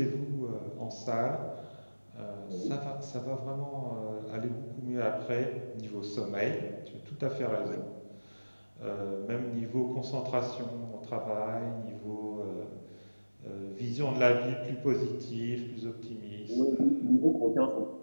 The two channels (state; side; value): inverted; both; correlation -1.00